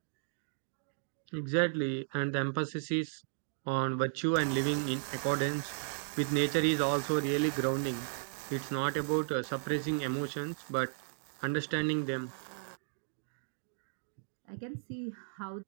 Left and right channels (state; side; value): silent; left; digital silence